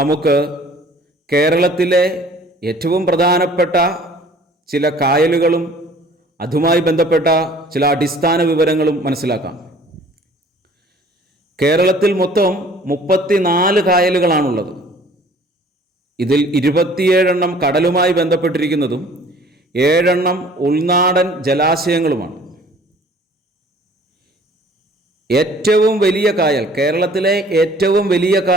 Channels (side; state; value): both; normal; correlation 0.52